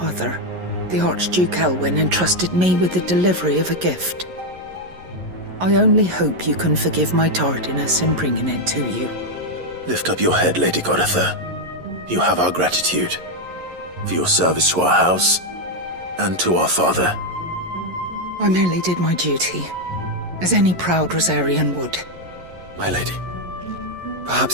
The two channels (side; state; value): left; late; 11 ms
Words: the Archduke Elwyn, entrusted me with the delivery of a gift. I only hope you can forgive my tardiness in bringing it to you. Lift up your head, Lady Goditha. You have our gratitude for your service to our house and to our father. I merely did my duty, as any proud Rosarian would. My lady,